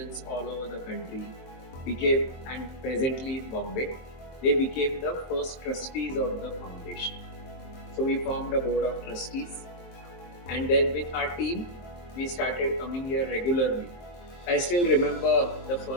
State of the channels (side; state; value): right; late; 23 ms